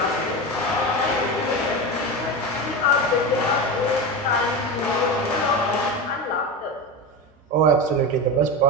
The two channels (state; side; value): normal; both; correlation 0.21